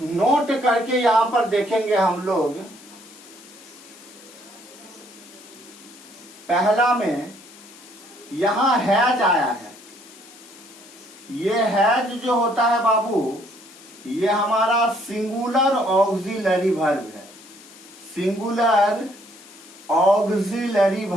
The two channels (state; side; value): noise; left; hiss, 21 dB below the sound